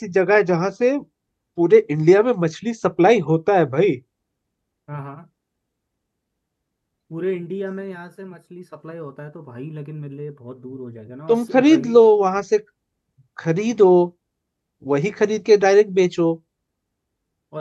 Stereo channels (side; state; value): both; identical; correlation 1.00